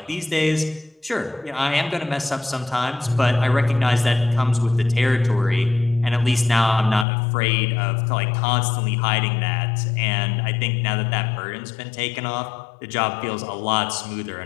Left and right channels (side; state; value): right; drops out; at 7.1 s